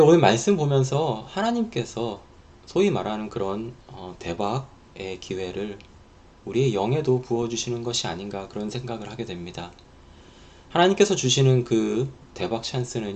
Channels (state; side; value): identical; both; correlation 1.00